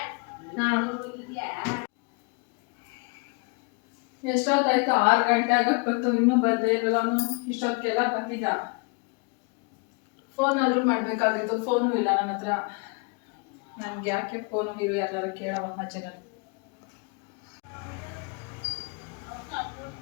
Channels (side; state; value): right; quieter; 32.6 dB